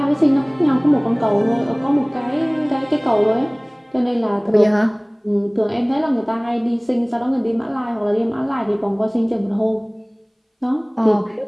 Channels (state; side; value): identical; both; correlation 1.00